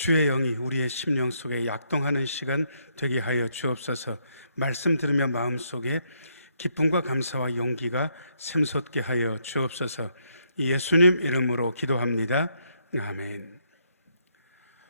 영이 우리의 심령 속에 약동하는 시간 되게 하여 주옵소서. 말씀 들으며 마음속에 기쁨과 감사와 용기가 샘솟게 하여 주옵소서. 예수님 이름으로 기도합니다. 아멘.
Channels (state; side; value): inverted; both; correlation -0.75